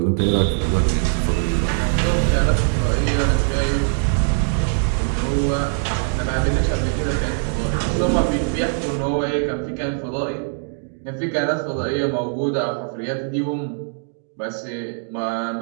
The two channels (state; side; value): silent; left; digital silence